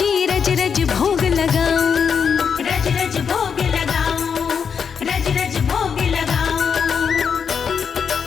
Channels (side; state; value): right; quieter; 6.6 dB